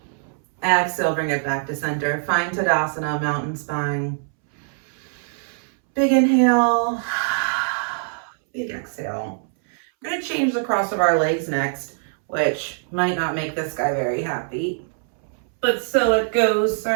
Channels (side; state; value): left; silent; 64 dB below the other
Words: Exhale, bring it back to center. Find Tadasana, mountain spine. Big inhale. Big exhale. We're going to change the cross of our legs next, which might not make this guy very happy. But so it goes,